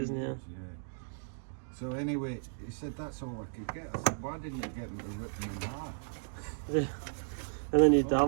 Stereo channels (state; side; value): silent; left; digital silence